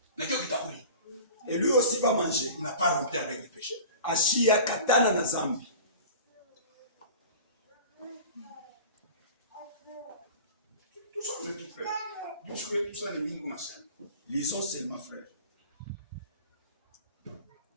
Na kio kitakuli. Et lui aussi va manger. Il n'a pas rompu avec le péché. Ashia katana na zambi. Tout ça, mes frères. Tout ça, les lignes qu'on a fait. Lisons seulement, frère.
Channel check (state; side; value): inverted; both; correlation -0.39